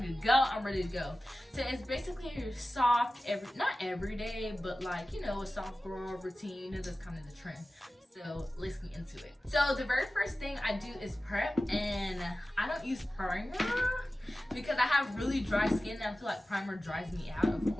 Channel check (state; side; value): normal; both; correlation 0.95